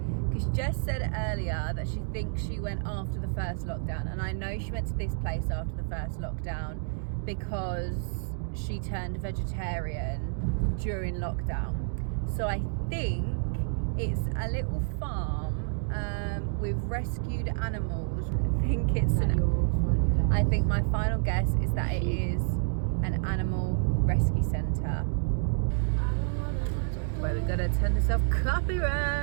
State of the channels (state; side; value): silent; left; digital silence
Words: because Jess said earlier that she thinks she went after the first lockdown, and I know she went to this place after the first lockdown because she turned vegetarian during lockdown. So I think it's a little farm with rescued animals. I think my final guess is that it is an animal rescue centre. Wait, we gotta turn this off